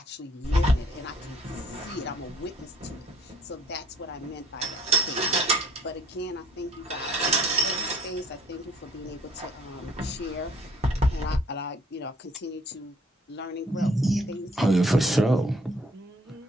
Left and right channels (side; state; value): both; normal; correlation 0.60